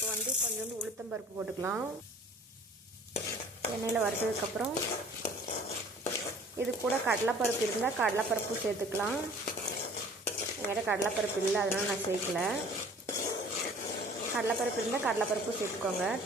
வந்து கொஞ்சோண்டு உளுத்தம்பருப்பு போட்டுக்கலாம். எண்ணெயில் வறுத்ததுக்கப்புறம் இது கூட கடலைப்பருப்பு இருந்தால் கடலைப்பருப்பு சேர்த்துக்கலாம். என்கிட்ட கடலைப்பருப்பு இல்லை, அதனால் நான் சேர்க்கல. கடலைப்பருப்பு இருந்தால் கடலைப்பருப்பு சேர்த்துக்கோங்க,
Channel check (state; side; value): normal; both; correlation 0.49